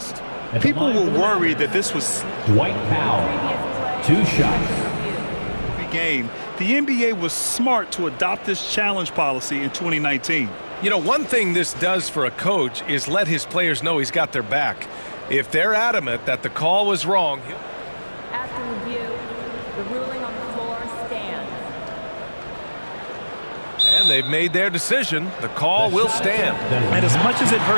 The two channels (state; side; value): inverted; both; correlation -1.00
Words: People were worried that this was Dwight Powell. 2 shots. game. The NBA was smart to adopt this challenge policy in 2019. You know, one thing this does for a coach is let his players know he's got their back. If they're adamant that the call was wrong. After review, the ruling on the floor stands. And they've made their decision. The call will stand. And as much as it